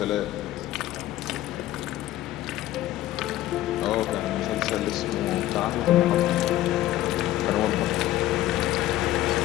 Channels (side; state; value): right; quieter; 14.6 dB